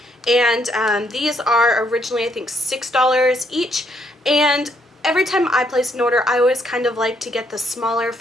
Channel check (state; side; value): normal; both; correlation 0.72